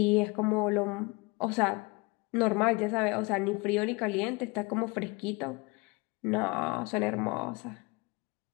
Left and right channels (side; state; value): right; quieter; 26.7 dB